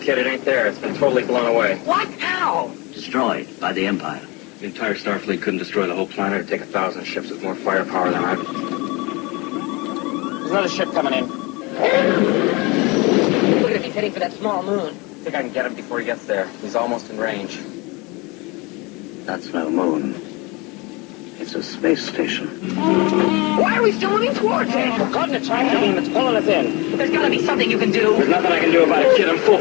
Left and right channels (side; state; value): right; quieter; 26.0 dB